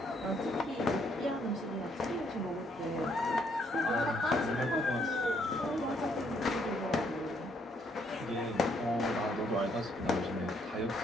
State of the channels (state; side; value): normal; both; correlation 0.70